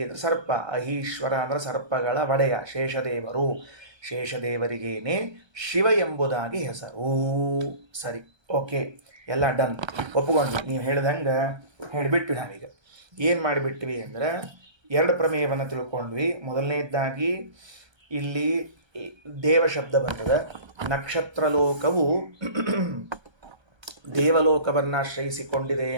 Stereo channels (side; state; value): left; late; 1.3 ms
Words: ಅಂದರೆ ಸರ್ಪ. ಅಹೀಶ್ವರ ಅಂದರೆ ಸರ್ಪಗಳ ಒಡೆಯ ಶೇಷದೇವರು. ಶೇಷದೇವರಿಗೇನೆ ಶಿವ ಎಂಬುದಾಗಿ ಹೆಸರು. ಸರಿ, ಓಕೆ, ಎಲ್ಲ ಡನ್, ಒಪ್ಪಿಕೊಂಡ್ವಿ. ನೀವು ಹೇಳ್ದಂಗೆ ಹೇಳಿಬಿಟ್ವಿ. ನಾವೀಗ ಏನು ಮಾಡಿಬಿಟ್ವಿ ಅಂದರೆ ಎರಡು ಪ್ರಮೇಯವನ್ನು ತಿಳ್ಕೊಂಡ್ವಿ. ಮೊದಲನೇದಾಗಿ ಇಲ್ಲಿ ದೇವ ಶಬ್ದ ಬರ್ತದೆ. ನಕ್ಷತ್ರ ಲೋಕವು ದೇವಲೋಕವನ್ನು ಆಶ್ರಯಿಸಿಕೊಂಡಿದೆ